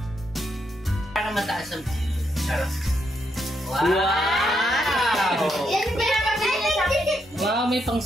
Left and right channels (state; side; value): normal; both; correlation 0.79